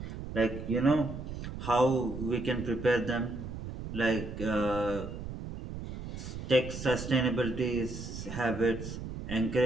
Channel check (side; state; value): right; noise; rumble, 8 dB below the sound